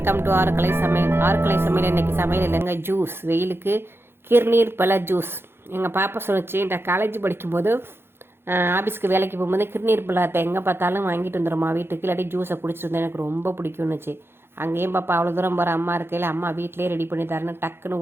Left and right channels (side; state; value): left; late; 0.11 ms